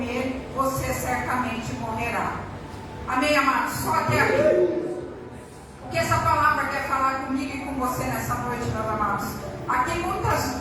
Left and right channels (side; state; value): both; identical; correlation 1.00